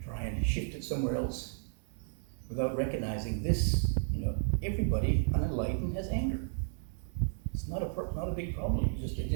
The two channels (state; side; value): silent; left; digital silence